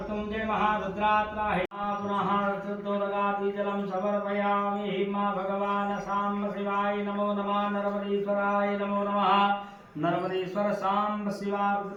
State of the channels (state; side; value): identical; both; correlation 1.00